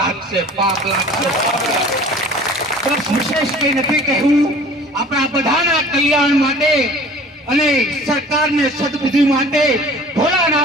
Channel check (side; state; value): both; normal; correlation 0.46